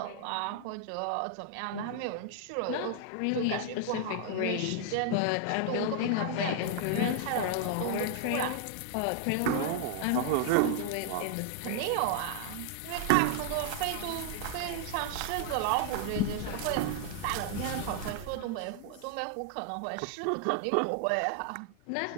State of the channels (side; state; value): both; different; correlation -0.01